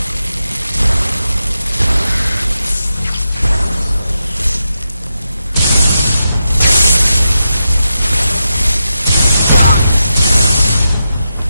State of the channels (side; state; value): both; inverted; correlation -0.88